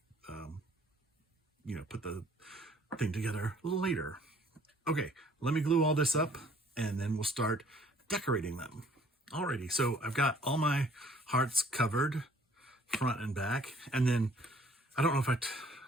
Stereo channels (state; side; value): normal; both; correlation 0.57